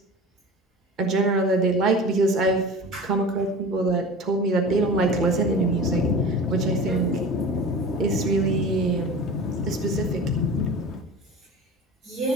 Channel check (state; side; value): normal; both; correlation 0.36